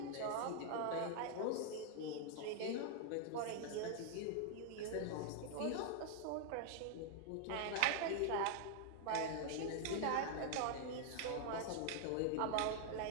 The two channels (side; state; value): both; different; correlation 0.00